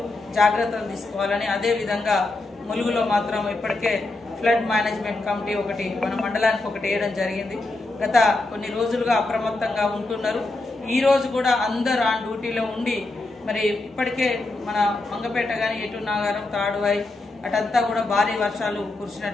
జాగ్రత్తలు తీసుకోవాలని, అదే విధంగా ములుగులో మాత్రం ఇప్పటికే ఫ్లడ్ మేనేజ్మెంట్ కమిటీ ఒకటి మన మండలానికి ఒకటి వేయడం జరిగింది। గత కొన్ని రోజులుగా అప్రమత్తంగా ఉంటున్నారు। ఈ రోజు కూడా అందరూ ఆన్ డ్యూటీలో ఉండి మరి ఇప్పటికే మన మంగపేట కానీ ఎటు నాగారం తాడువాయి అటంతా కూడా భారీ వర్షాలు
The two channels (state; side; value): quieter; right; 3.0 dB